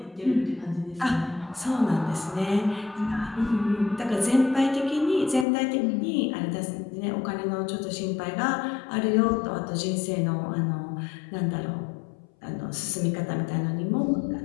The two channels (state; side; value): drops out; right; at 5.5 s